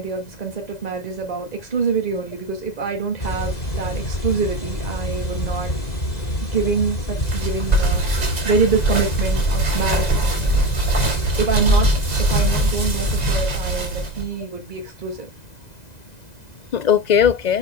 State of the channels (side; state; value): right; late; 2.0 ms